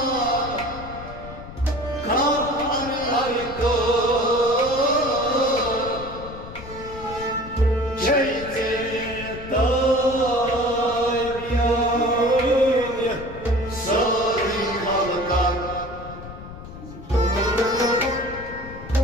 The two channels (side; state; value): left; noise; rumble, 14 dB below the sound